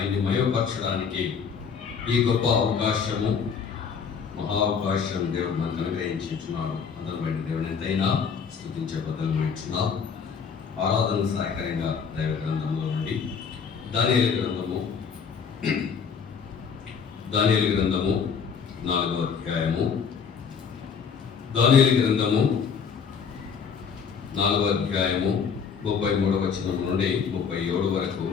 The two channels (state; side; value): quieter; right; 6.4 dB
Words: మయపరచడానికి ఈ గొప్ప అవకాశము, మహా అవకాశం దేవుడు మనకు అనుగ్రహించున్నాడు. అందరం బయట దేవుని ఎంతైనా స్తుతించే బదులుచున్నాం. ఆరాధన సహాయకరంగా దైవ గ్రంథంలో నుండి దానియేలు గ్రంథము 4వ అధ్యాయము, దానియేలు గ్రంథము 4వ అధ్యాయము 33వ వచనం నుండి 37 వరకు